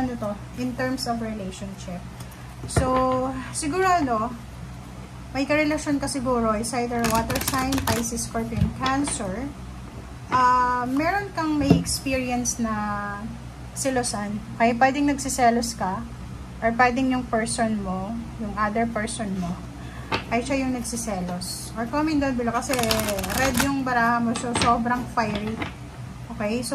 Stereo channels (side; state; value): both; identical; correlation 1.00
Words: to, in terms of relationship. So, siguro may karelasyon ka siguro, is either water sign, Pisces, Scorpion, Cancer. Meron kang may experience na selosan. Okay, pwedeng nagsiselos ka, or pwedeng yung person mo, yung other person mo, ay siya yung nagsiselos. Or comment down below kasi red yung baraha mo, so sobrang fiery. Okay,